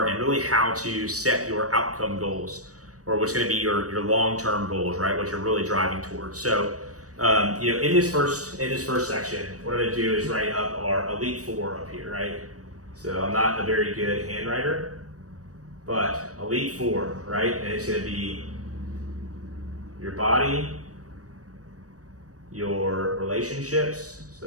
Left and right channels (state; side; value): late; left; 0.66 ms